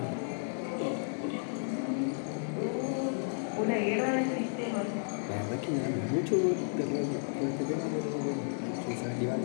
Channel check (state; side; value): silent; right; 56 dB below the other